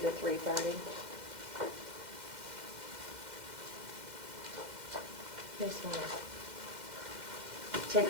to 3:30. Just want to take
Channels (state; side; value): late; left; 2.1 ms